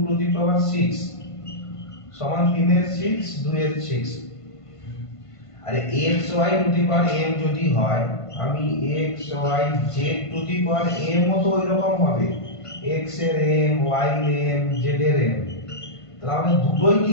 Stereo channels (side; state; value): right; late; 1.5 ms